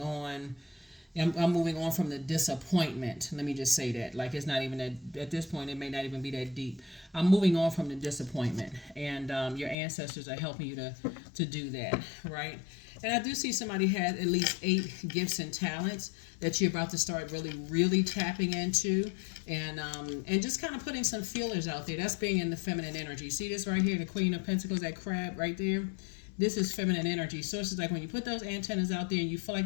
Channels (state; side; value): drops out; right; at 9.8 s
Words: on. I'm moving on from the disappointment. Let me just say that. Like, it's not even at this point, it may not even be that deep. I'm moving on from the disappointment. And your ancestors are helping you to do that, right? And I do see somebody has at least 8 gifts and talents that you're about to start really tapping into. And just kind of putting some feelers out there. That's being in the feminine energy. See this right here, the Queen of Pentacles, that crab right there? This is feminine energy. So it's like when you put those antennas out there and you feel